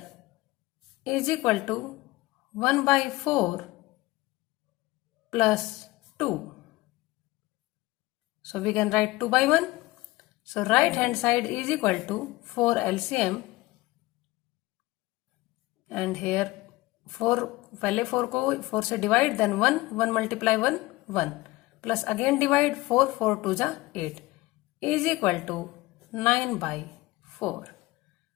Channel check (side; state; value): right; quieter; 20.0 dB